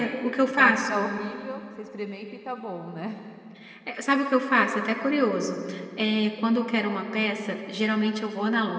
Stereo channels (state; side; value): identical; both; correlation 1.00